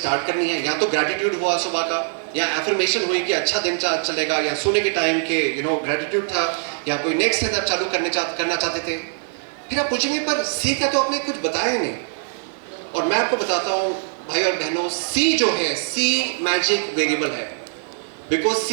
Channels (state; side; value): silent; left; digital silence